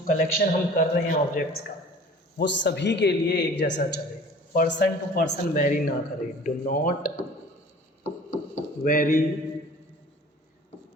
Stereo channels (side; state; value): both; normal; correlation 0.46